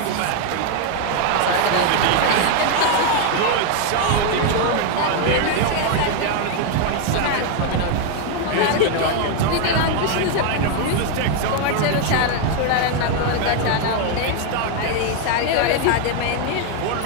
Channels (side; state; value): both; different; correlation 0.01